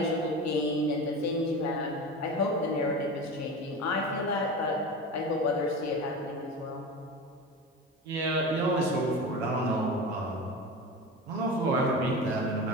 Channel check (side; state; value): both; normal; correlation 0.28